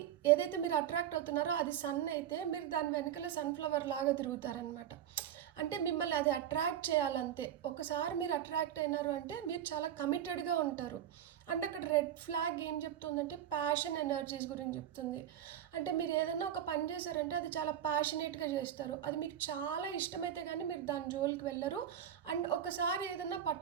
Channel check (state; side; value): quieter; left; 10.3 dB